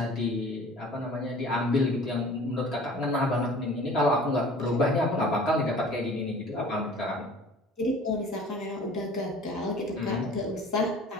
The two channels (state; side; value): normal; both; correlation 0.46